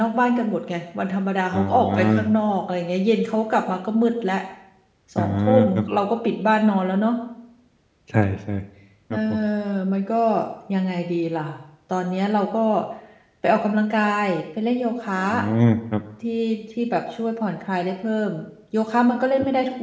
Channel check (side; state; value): both; identical; correlation 1.00